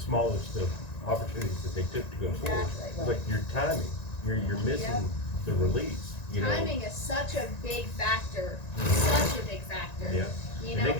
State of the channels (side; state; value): right; late; 1.9 ms